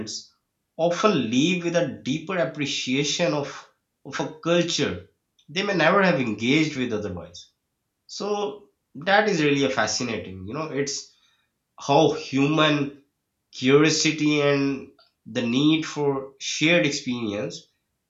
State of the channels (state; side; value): identical; both; correlation 1.00